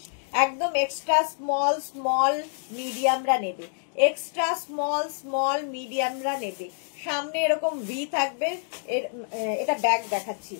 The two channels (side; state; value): right; silent; 60 dB below the other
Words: একদম এক্সট্রা স্মল স্মল মিডিয়ামরা নেবে, এক্সট্রা স্মল স্মল মিডিয়ামরা নেবে। সামনে এরকম ভি থাকবে, এটা ব্যাক দেখাচ্ছি।